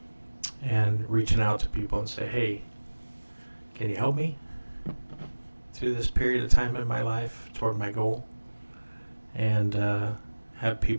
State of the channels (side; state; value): both; inverted; correlation -1.00